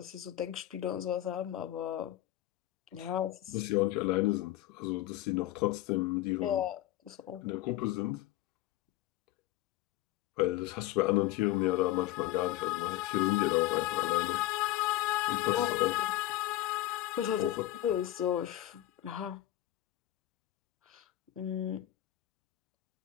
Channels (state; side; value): quieter; right; 14.9 dB